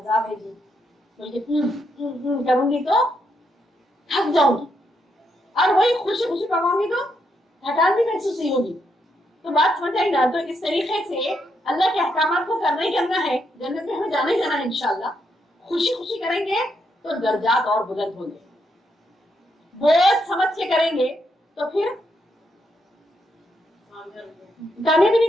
है जी, तो करूंगी तो थक जाऊंगी, और वही खुशी खुशी पकाऊंगी तो थकान भी महसूस नहीं होगी। तो बात समझ आई ना। तो इस तरीके से अल्लाह के अहकामात को करना ही करना है, जन्नत में हमें जाना ही जाना है इंशाल्लाह। खुशी खुशी करेंगे तो दर्जात और बुलंद होंगे, बहुत समझ के करेंगे तो फिर कामयाबी नहीं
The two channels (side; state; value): both; normal; correlation 0.79